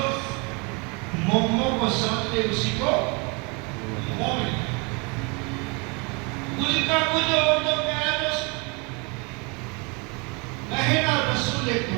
मोमो को समझते उसी को मोमिन, कुछ का कुछ और जो प्यारा दोस्त कहना रसूल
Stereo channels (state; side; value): quieter; left; 31.0 dB